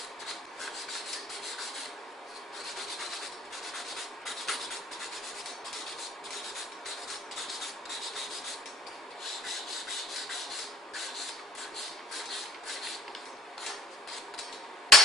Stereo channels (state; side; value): normal; both; correlation 0.55